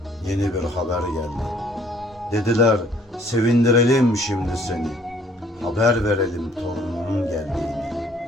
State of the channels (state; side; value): normal; both; correlation 0.60